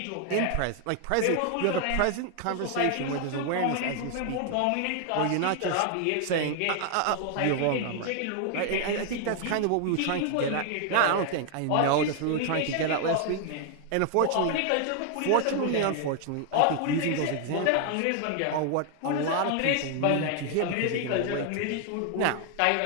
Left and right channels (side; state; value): both; different; correlation 0.00